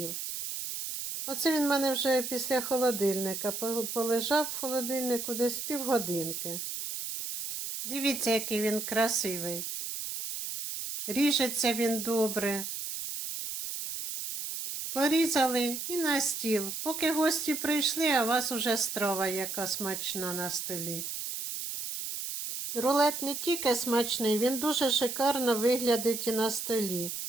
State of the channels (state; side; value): noise; right; hiss, 5 dB below the sound